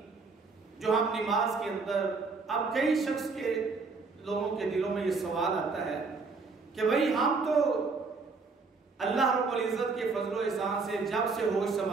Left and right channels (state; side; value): quieter; left; 4.3 dB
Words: جو ہم نماز کے اندر، اب کئی شخص کے لوگوں کے دلوں میں یہ سوال آتا ہے کہ بھائی ہم تو اللہ رب العزت کے فضل و احسان سے جب سے ہوش